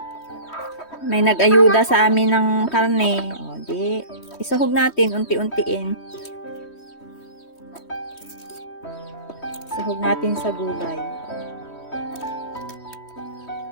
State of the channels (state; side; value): late; right; 3.1 ms